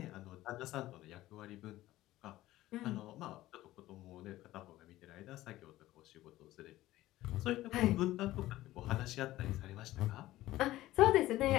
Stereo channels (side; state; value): right; quieter; 16.0 dB